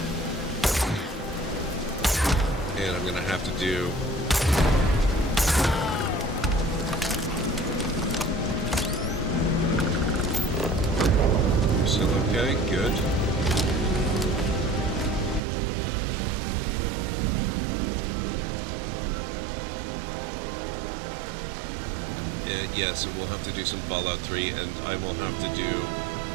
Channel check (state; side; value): drops out; left; at 15.4 s